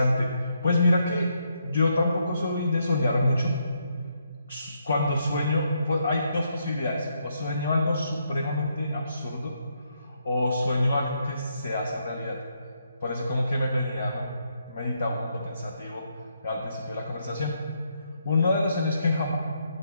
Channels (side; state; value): both; inverted; correlation -0.77